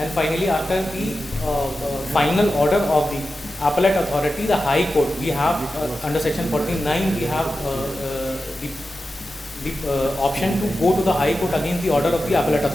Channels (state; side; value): normal; both; correlation 0.92